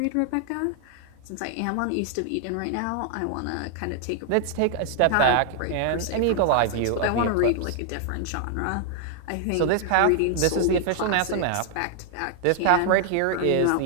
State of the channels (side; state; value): both; different; correlation 0.00